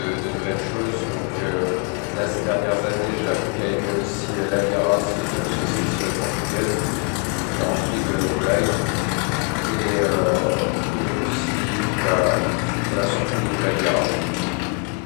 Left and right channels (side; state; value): right; quieter; 32.3 dB